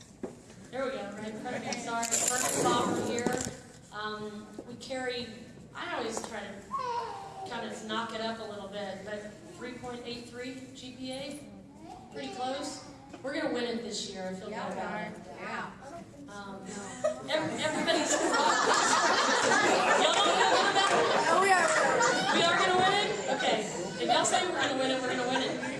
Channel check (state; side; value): identical; both; correlation 1.00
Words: There we go, right in front of me, sorry. Fern and Bob are here. We carry, I always try to kind of knock it up a little bit, but 3.83 GPA, pretty close. We're going to win it this year, I feel good about it. Yeah. Everybody's y'all don't feel good about it? Oh, we are. We are going to win it? Okay. If y'all say we're going to win it, we're going to win it.